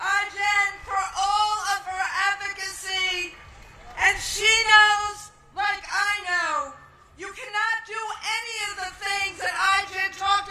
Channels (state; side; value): identical; both; correlation 1.00